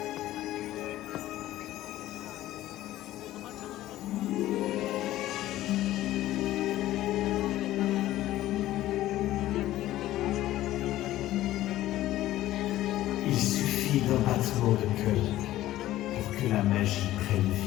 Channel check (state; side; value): quieter; right; 14.7 dB